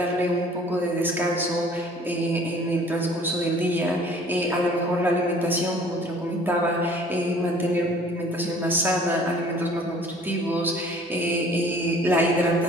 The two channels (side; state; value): both; normal; correlation 0.52